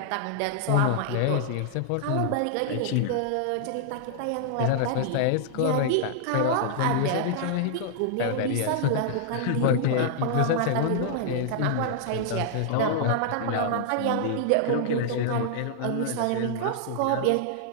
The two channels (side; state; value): both; different; correlation -0.01